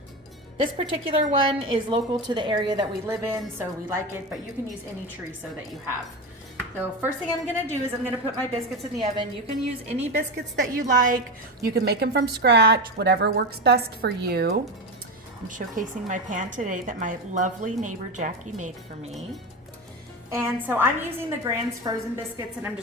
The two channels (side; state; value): both; normal; correlation 0.19